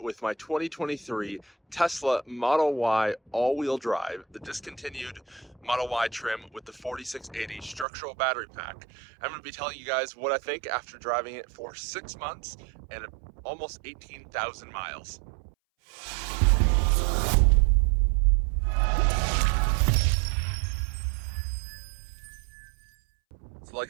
with my 2023 Tesla Model Y all-wheel drive, the discontinued Model Y trim with the 4680 structural battery pack. I'm going to be telling you guys what I think after driving it for 6 months and almost 18,000 miles. So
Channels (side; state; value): left; drops out; at 7.9 s